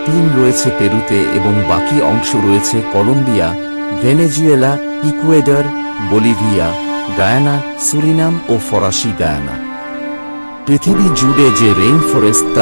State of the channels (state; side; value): inverted; both; correlation -1.00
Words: রয়েছে পেরুতে এবং বাকি অংশ রয়েছে Colombia, Venezuela, Ecuador, Bolivia, Guyana, Suriname ও ফরাসি গায়ানা। পৃথিবী জুড়ে যে রেইন ফরেস্ট